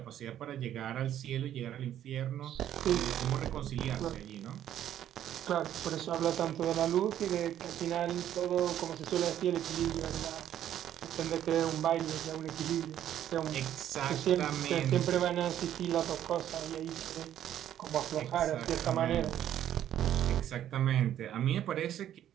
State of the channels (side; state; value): left; quieter; 11.2 dB